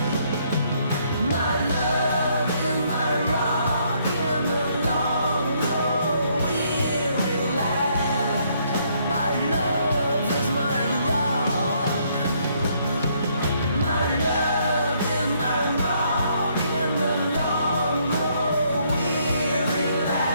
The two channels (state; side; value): inverted; both; correlation -0.69